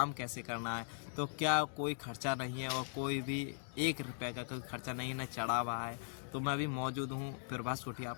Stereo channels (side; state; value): right; silent; digital silence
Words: कैसे करना है। तो क्या कोई खर्चा नहीं है और कोई भी 1 रुपये का कोई खर्चा नहीं न चढ़ा हुआ है। तो मैं अभी मौजूद हूँ प्रभास कुटिया